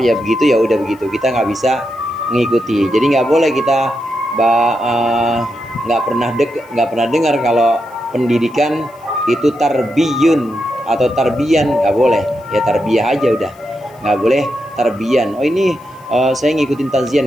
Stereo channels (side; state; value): left; noise; hiss, 30 dB below the sound